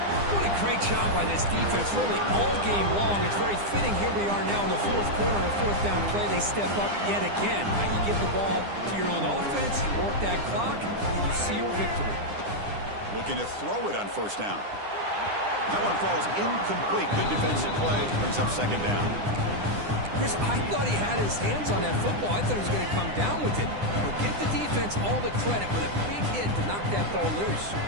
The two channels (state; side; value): late; left; 9.9 ms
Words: What a great job by this defense, really all game long. It's very fitting. Here we are now in the fourth quarter on a fourth down play. They step up yet again. Now you give the ball to your own offense, you work that clock, and you see your victory. Looking to throw it on first down. That one falls incomplete. Good defensive play. Brings up second down. Chris, I thought he had his hands on that football. I thought he was going to come down with it. But give the defense all the credit with a big hit to knock that ball loose.